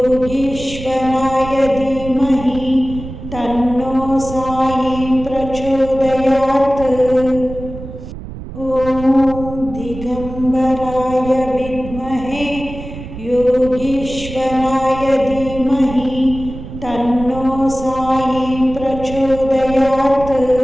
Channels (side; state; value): right; noise; rumble, 11 dB below the sound